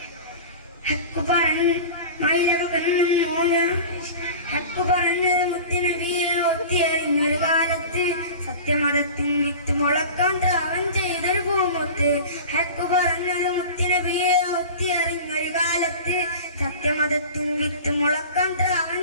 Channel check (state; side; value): inverted; both; correlation -0.35